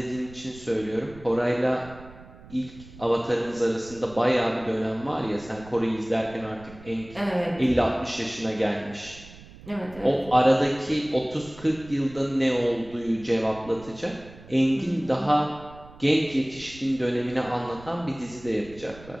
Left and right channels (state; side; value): noise; right; rumble, 19 dB below the sound